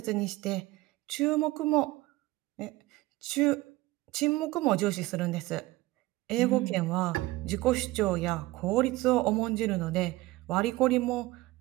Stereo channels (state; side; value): quieter; left; 19.1 dB